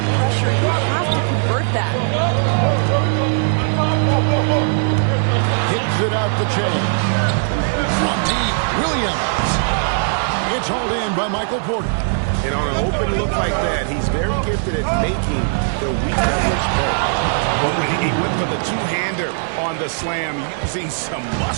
pressure, you have to convert that. Hits it out the chain. From deep, Williams. It's hauled in by Michael Porter. And on an open look like that, he's very gifted at making the weak leverage play. Oh, and he went for the two-hander on the slam, using some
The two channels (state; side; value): silent; left; digital silence